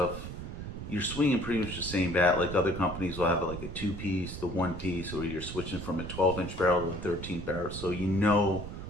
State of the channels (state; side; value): noise; right; rumble, 8 dB below the sound